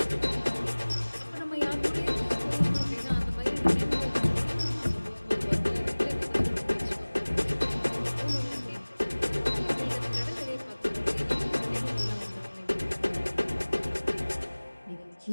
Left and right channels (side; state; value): both; inverted; correlation -1.00